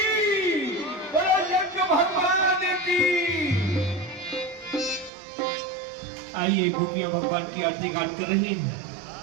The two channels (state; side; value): drops out; left; at 5.1 s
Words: आइए गोपियां भगवान की आरती गान कर रही हैं